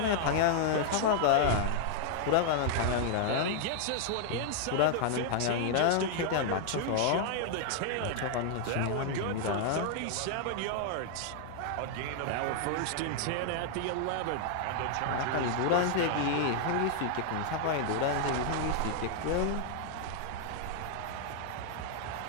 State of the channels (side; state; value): both; different; correlation 0.00